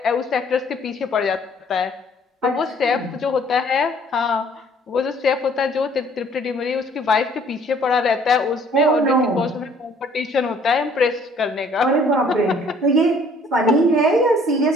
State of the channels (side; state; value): both; normal; correlation 0.58